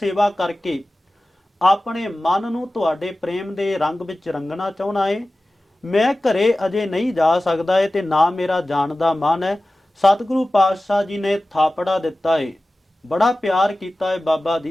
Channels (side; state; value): both; normal; correlation 0.96